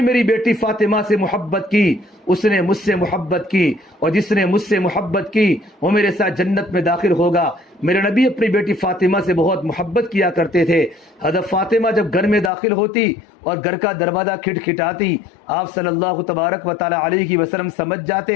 بیٹی فاطمہ سے محبت کی اس نے مجھ سے محبت کی اور جس نے مجھ سے محبت کی وہ میرے ساتھ جنت میں داخل ہوگا۔ میرے نبی اپنی بیٹی فاطمہ سے بہت محبت کیا کرتے تھے۔ حضرت فاطمہ جب گھر میں داخل ہوتی اور گھر کا دروازہ کھٹکھٹاتی، آپ صلی اللہ تبارک و تعالی علیہ وسلم سمجھ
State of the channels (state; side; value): drops out; right; at 12.5 s